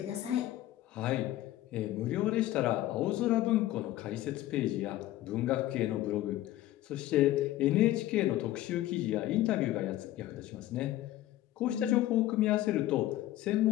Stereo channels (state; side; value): quieter; right; 14.8 dB